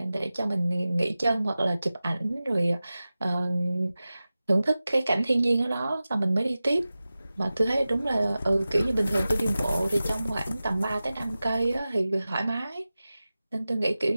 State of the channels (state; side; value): inverted; both; correlation -0.96